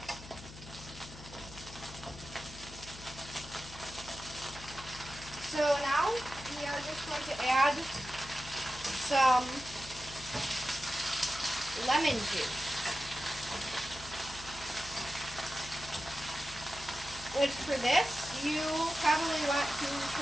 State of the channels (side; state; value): left; noise; hum, 15 dB below the sound